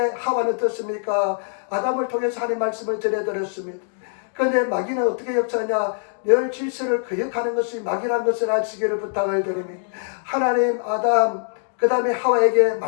하와는 어떻습니까? 아담을 통해서 하나님 말씀을 전해들었습니다. 그런데 마귀는 어떻게 역사하냐? 열 질서를 거역하는 것이 마귀라는 것을 아시기를 부탁을 드립니다. 하나님, 아담, 그 다음에 하와에게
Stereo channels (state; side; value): silent; right; digital silence